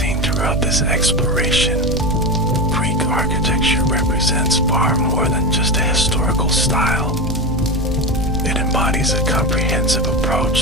throughout this exploration, Greek architecture represents far more than just a historical style. It embodies a comprehensive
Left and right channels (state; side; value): normal; both; correlation 0.18